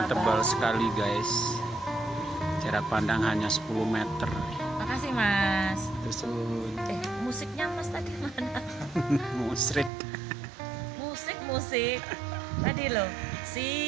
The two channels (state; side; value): drops out; left; at 9.9 s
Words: tebal sekali guys. Jarak pandang hanya 10 meter. Makasih Mas. Terus Musiknya Mas tadi mana? musrik. Musik tadi loh.